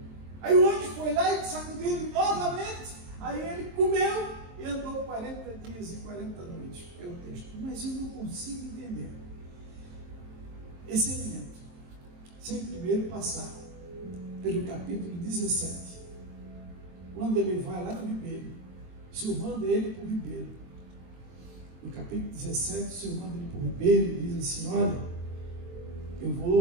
Aí o anjo foi lá e sacudiu ele novamente. Aí ele comeu e andou 40 dias e 40 noites. É o texto. Mas eu não consigo entender esse elemento sem primeiro passar pelo capítulo 17. Quando ele vai lá no ribeiro, o Senhor manda ele para o ribeiro. No capítulo 17, o Senhor manda ele para o ribeiro e diz assim: olha,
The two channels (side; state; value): left; late; 23 ms